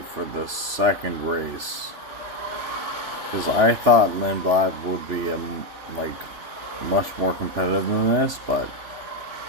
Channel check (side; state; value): left; late; 3.5 ms